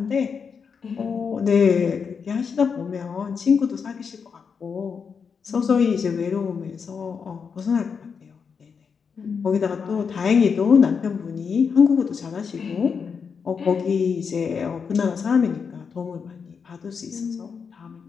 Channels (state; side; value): quieter; right; 6.1 dB